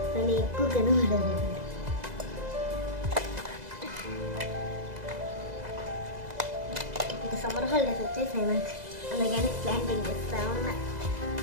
కానీ ఎక్కువ కనబడదు. ఇంకా సమ్మర్ హాలిడేస్ వచ్చేసాయి నాకు, అందుకని ప్లాంటింగ్ చేస్తా ఉన్నా.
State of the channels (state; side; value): late; left; 2.0 ms